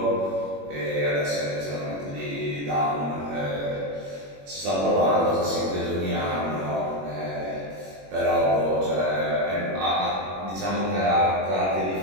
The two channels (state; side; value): late; left; 21 ms